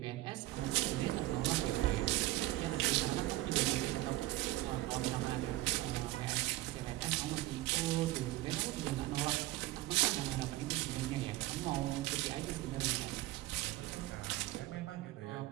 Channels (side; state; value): left; quieter; 17.7 dB